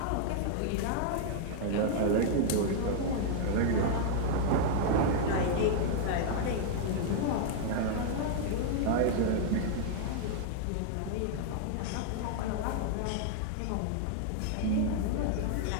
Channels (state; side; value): different; both; correlation 0.00